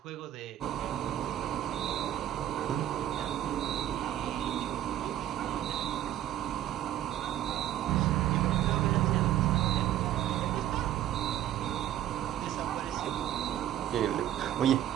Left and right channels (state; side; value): quieter; left; 12.0 dB